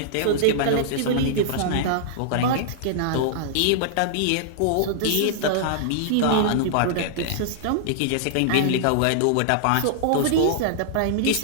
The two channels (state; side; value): different; both; correlation -0.01